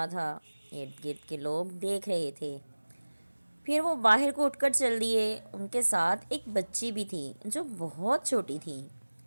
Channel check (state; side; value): inverted; both; correlation -1.00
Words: تھا۔ ارد گرد کے لوگ دیکھ رہے تھے۔ پھر وہ باہر کو اٹھ کر چل دیے۔ ان کے ساتھ ایک بچی بھی تھی جو بہت چھوٹی تھی۔